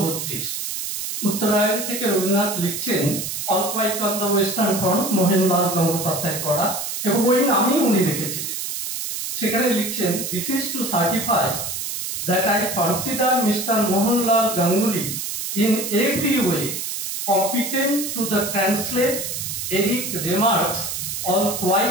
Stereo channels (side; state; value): right; noise; hiss, 4 dB below the sound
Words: উত্তরায়ণ থেকে রবীন্দ্রনাথ লিখছেন all quiet on the western front, Mohanlal Gangopadhyay করা, এবং ওই নামেই উনি লিখেছিলেন। সেখানে লিখছেন, this is to certify that I consider Mr. Mohanlal Ganguly in every way competent to the translate Eric Remarque's All